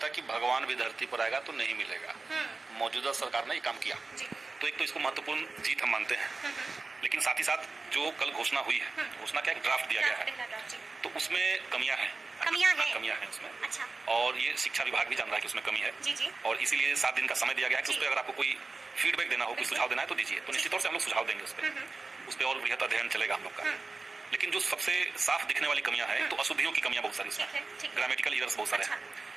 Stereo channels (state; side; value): quieter; left; 3.7 dB